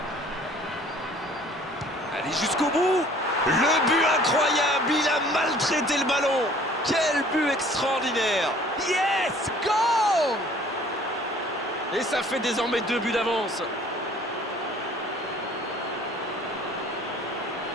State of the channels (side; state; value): both; normal; correlation 0.53